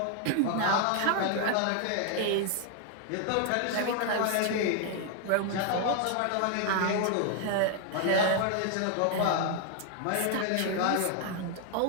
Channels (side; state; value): both; different; correlation 0.00